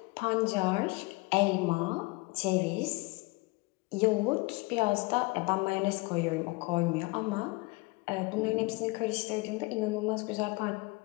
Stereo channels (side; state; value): right; quieter; 25.1 dB